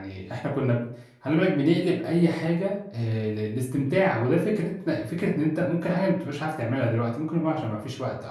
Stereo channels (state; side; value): identical; both; correlation 1.00